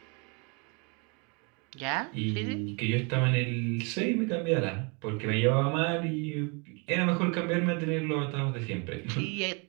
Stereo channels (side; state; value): left; quieter; 32.6 dB